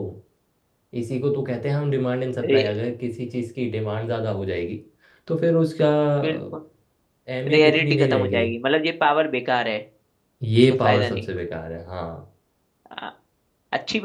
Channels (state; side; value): identical; both; correlation 1.00